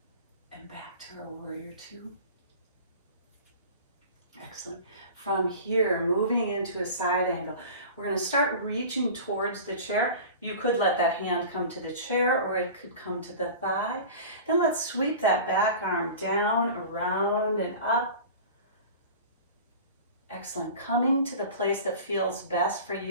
And back to our warrior two. Excellent. From here, moving into a side angle, we're going to start reaching towards the chair. You could let that hand come to the chair, or it could come to the thigh. Then let's sweep that back arm down, around, and up. Excellent. Coming to the place that feels best for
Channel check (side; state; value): both; inverted; correlation -0.37